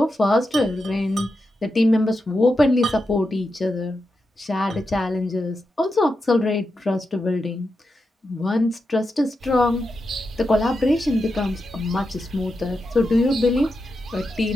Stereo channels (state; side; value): normal; both; correlation 0.88